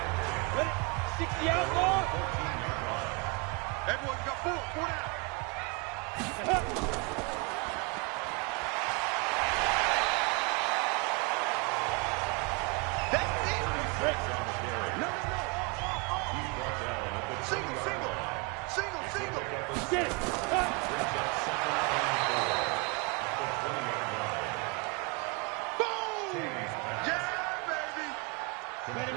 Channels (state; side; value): quieter; left; 30.8 dB